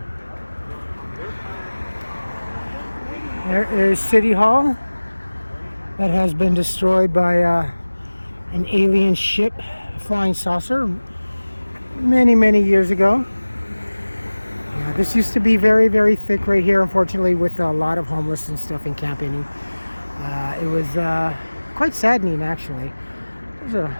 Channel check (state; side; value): inverted; both; correlation -1.00